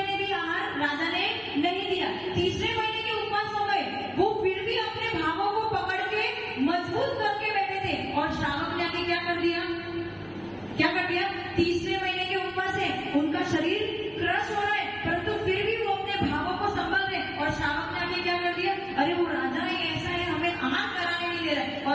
भी आहार राजा ने नहीं दिया। तीसरे महीने के उपवास हो गए, वो फिर भी अपने भावों को पकड़ के मजबूत करके बैठे थे, और श्रावक ने आके क्या कर दिया? तीसरे महीने के उपवास है, उनका शरीर क्रश हो रहा है, परंतु फिर भी वो अपने भावों को संभल रहे, और श्रावक ने आके क्या कर दिया? अरे वो राजा ही ऐसा है, हमें आहार कराने नहीं दे रहा है,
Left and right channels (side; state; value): both; identical; correlation 1.00